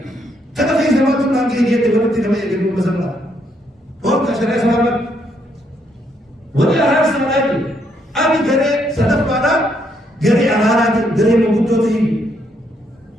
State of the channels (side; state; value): both; normal; correlation 0.74